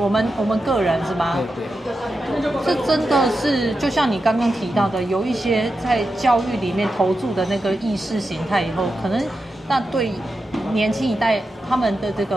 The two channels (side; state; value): both; normal; correlation 0.89